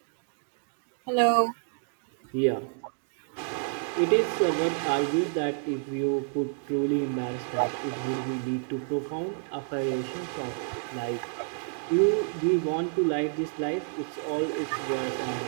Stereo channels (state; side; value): silent; left; 58 dB below the other